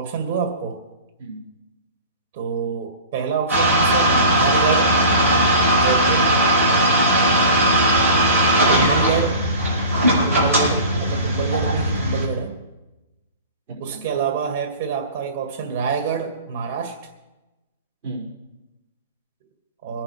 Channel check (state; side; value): inverted; both; correlation -0.38